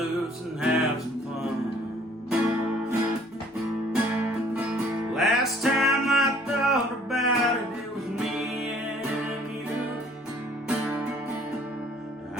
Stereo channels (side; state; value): both; normal; correlation 0.57